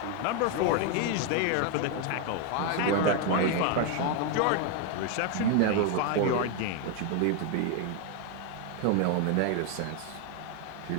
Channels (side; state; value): both; different; correlation 0.01